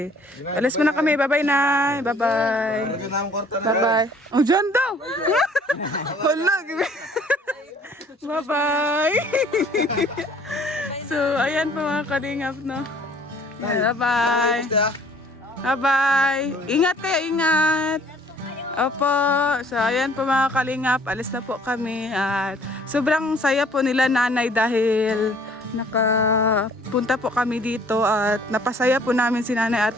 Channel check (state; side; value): normal; both; correlation 0.56